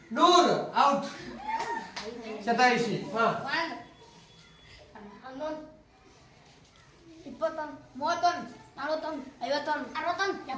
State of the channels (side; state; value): both; identical; correlation 1.00